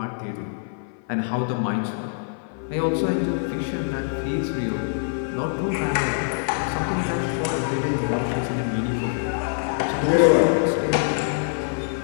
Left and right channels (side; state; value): right; silent; 57 dB below the other